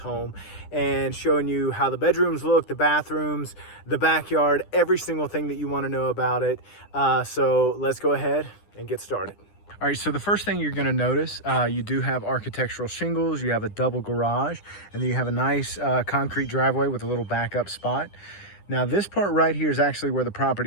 and showing you how the bedrooms look, the bathrooms, the backyard, every single thing that you want to know about it. So let's go ahead and get started. All right, so the first thing you're gonna notice, you do have architectural shingles, you have a double garage, and then you have a nice concrete driveway with a little backup spot. Now this part right here is actually where the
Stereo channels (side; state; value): right; late; 9.9 ms